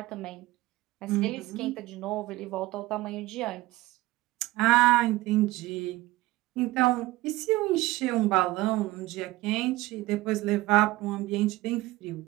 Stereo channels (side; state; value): left; quieter; 18.7 dB